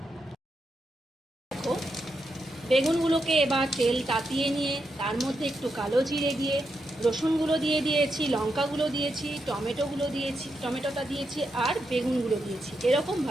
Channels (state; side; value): normal; both; correlation 0.84